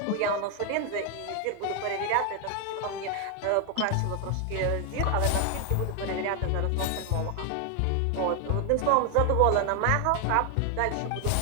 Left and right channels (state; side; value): different; both; correlation 0.01